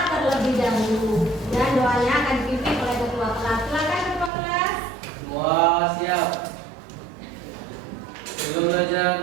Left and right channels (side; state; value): left; drops out; at 4.3 s